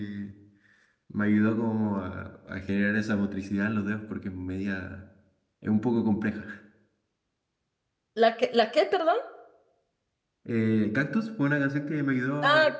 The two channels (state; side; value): identical; both; correlation 1.00